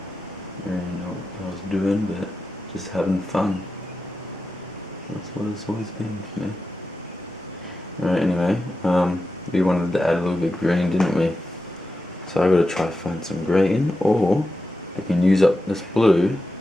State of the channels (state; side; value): normal; both; correlation 0.90